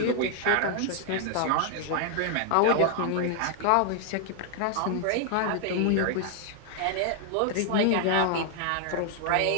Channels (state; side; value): different; both; correlation 0.00